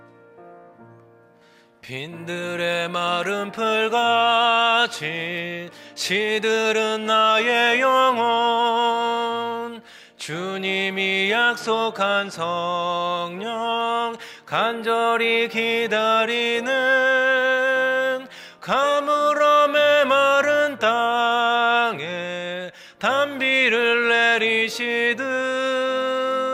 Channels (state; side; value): identical; both; correlation 1.00